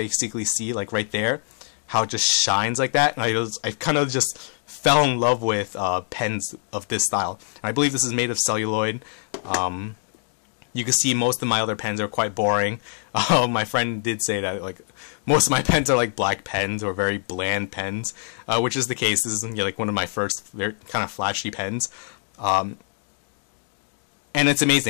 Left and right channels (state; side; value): silent; right; digital silence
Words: see, like right there, how it just shines like that. And I kind of just fell in love with pens of this style. And I believe this is made of celluloid. You can see most of my other pens are quite boring. My friend did say that like most of my pens are like black pens or very bland pens, which is the case. This is like one of my first very kind of flashy pens, and it's